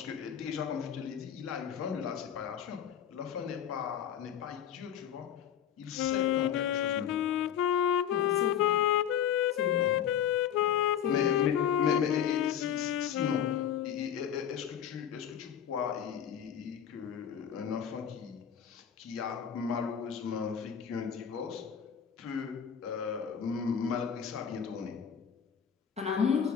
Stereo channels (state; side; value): quieter; right; 9.0 dB